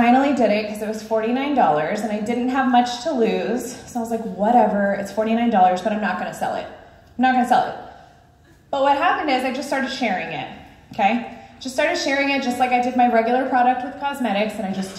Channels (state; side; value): identical; both; correlation 1.00